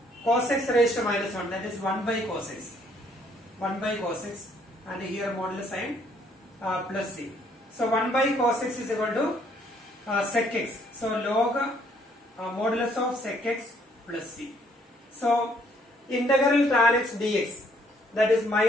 cos x raised to minus 1, that is 1 by cos x. 1 by cos x, and here modulus sign plus c. So 1 by cos x is equal to sec x. So log modulus of sec x plus c. So integral tan x dx, that is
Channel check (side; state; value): both; normal; correlation 0.66